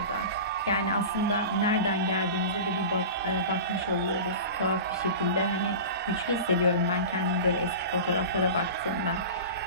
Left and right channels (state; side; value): inverted; both; correlation -0.31